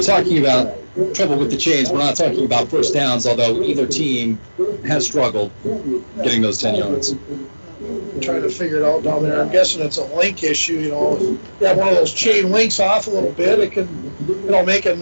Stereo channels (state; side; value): inverted; both; correlation -1.00